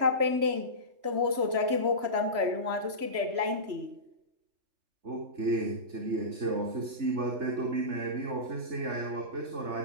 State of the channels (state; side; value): late; left; 3.0 ms